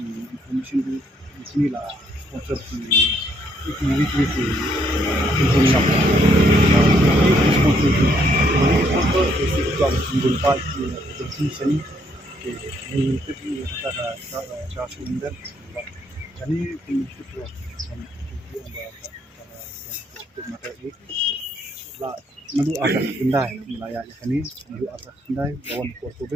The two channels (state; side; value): normal; both; correlation 0.71